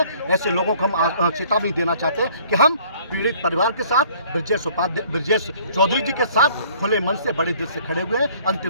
ऐसे लोगों को हम चेतावनी देना चाहते हैं कि हम पीड़ित परिवार के साथ, ब्रजेश चौधरी जी के साथ खुले मन से, बड़े दिल से खड़े हुए हैं,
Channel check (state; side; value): inverted; both; correlation -0.56